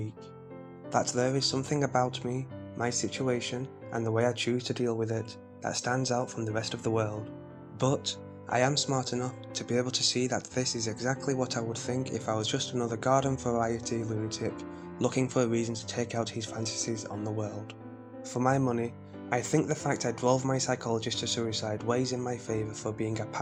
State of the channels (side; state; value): both; identical; correlation 1.00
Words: That there is something about me, my situation, and the way I choose to deal with it, that stands out from the rest of the world. But I am smart enough to be able to see that this is exactly what I would think if I was just another garden variety lunatic looking for a reason to take out his fantasies on the world. For my money, I think the fact I drove my psychologist to suicide weighs in my favour for being a